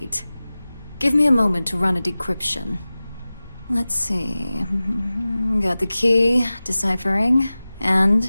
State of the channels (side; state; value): both; inverted; correlation -0.97